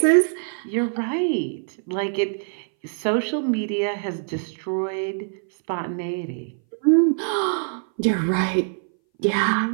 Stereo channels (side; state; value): left; silent; 60 dB below the other